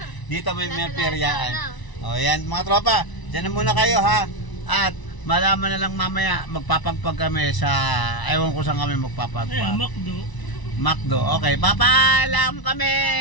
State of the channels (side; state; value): right; late; 1.0 ms